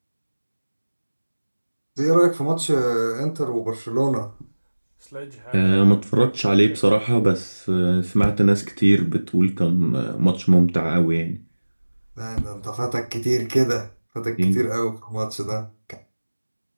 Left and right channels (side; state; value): both; inverted; correlation -1.00